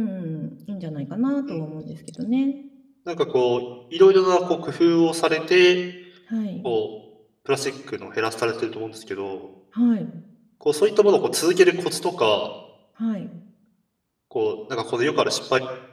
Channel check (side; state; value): both; identical; correlation 1.00